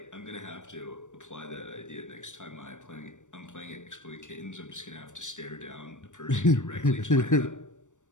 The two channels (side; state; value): right; late; 0.85 ms